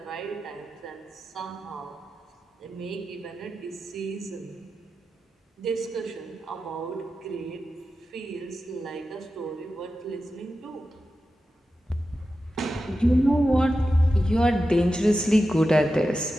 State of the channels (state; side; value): normal; both; correlation 0.92